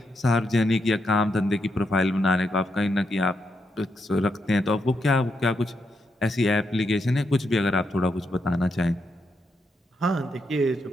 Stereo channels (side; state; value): both; normal; correlation 0.81